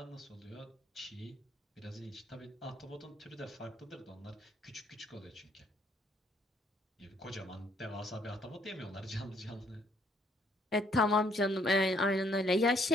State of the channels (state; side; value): normal; both; correlation 0.66